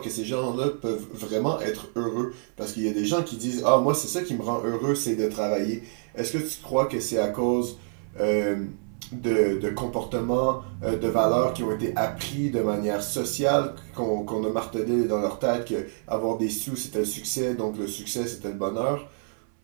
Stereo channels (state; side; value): silent; left; 60 dB below the other